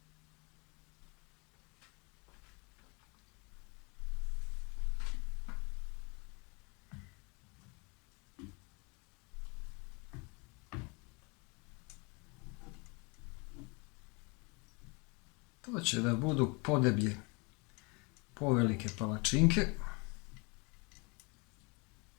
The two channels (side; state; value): right; quieter; 30.1 dB